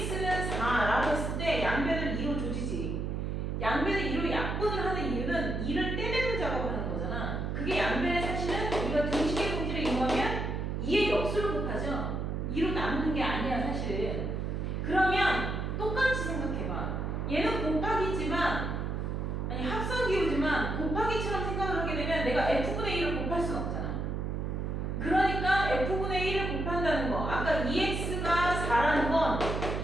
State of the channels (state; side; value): noise; right; hum, 2 dB below the sound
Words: 4라고 했을 때 양변을 2로 조지지. 양변을 2로 약분을 하는 이유는 2를 떼내는 작업을 하는 거잖아. 그게 양변의 사실은 우리가 등식의 공지를 이용하면 2의 역수를 곱하죠. 2로 나누는 게 아니야 사실은. 그러면 똑같이 생각해봐. 얘는 곱하기지만 아니 합성기호지만 곱하기처럼 생각을 하게 되면 내가 F분의 1을 곱할 수는 없잖아. 그러니까 F분의 1을 곱한다는 거. 아까 2x가 4라는 건